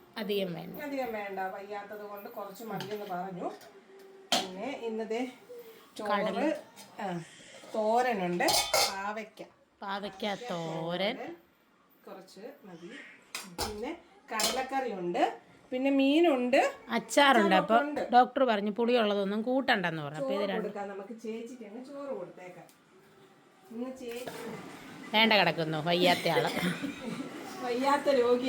അധികം വേണ്ട, വയ്യാത്തത് കൊണ്ട് കുറച്ച് മതിയെന്ന് പറഞ്ഞു. പിന്നെ ഇന്നത്തെ ചോറ് തോരനുണ്ട്, പാവയ്ക്ക തോരൻ കുറച്ച് മതി. പിന്നെ കടലക്കറി ഉണ്ട്, പിന്നെ മീനുണ്ട്, അച്ചാറുണ്ട്. അപ്പൊ ഡോക്ടർ പറഞ്ഞു പുളിയുള്ളതൊന്നും കൂട്ടണ്ടെന്ന് പറഞ്ഞു. അപ്പൊ ഇത് കൊടുക്കാം നമുക്ക്. ചേച്ചിക്ക് അങ്ങ് ചോറ് കൊടുത്തേക്കാം. ഇന്ന് ചേച്ചി വേണ്ട കിടക്കുന്നു, വയ്യാത്ത ആള്, വയ്യാത്ത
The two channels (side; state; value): both; identical; correlation 1.00